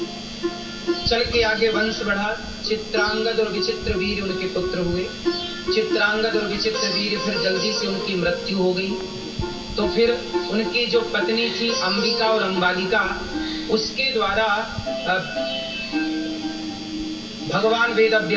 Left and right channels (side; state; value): both; identical; correlation 1.00